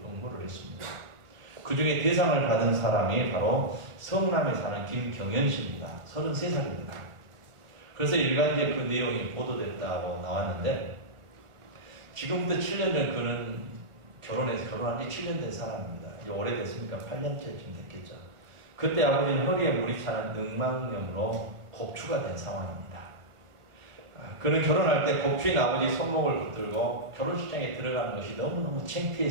응모를 했습니다. 그 중에 대상을 받은 사람이 바로 성남에 사는 김경연 씨입니다. 33살입니다. 그래서 일간지에 그 내용이 보도됐다고 나왔는데 지금부터 7년 전 그는 결혼한 지 7년 된 사람입니다. 오래됐으니까 8년째쯤 됐겠죠. 그때 아버지는 허리에 물이 차는 늑막염으로 곡추가 된 상황입니다. 그는 결혼할 때 곡추인 아버지 손목을 붙들고 결혼식장에 들어가는 것이 너무너무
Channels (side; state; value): left; late; 1.4 ms